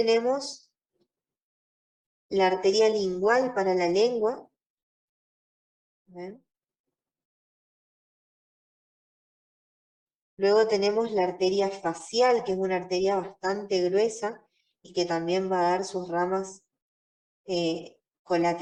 la arteria lingual para la lengua. ¿Ven? Luego tenemos la arteria facial, que es una arteria bastante gruesa y que también va a dar sus ramas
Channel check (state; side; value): identical; both; correlation 1.00